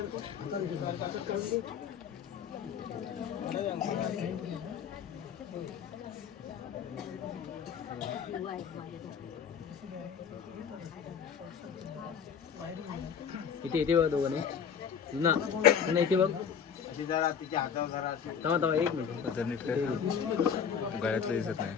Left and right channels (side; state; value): right; quieter; 7.4 dB